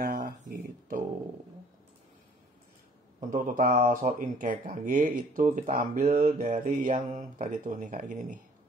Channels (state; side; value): normal; both; correlation 0.56